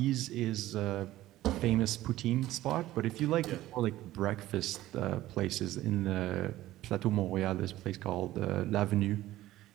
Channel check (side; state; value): left; quieter; 15.4 dB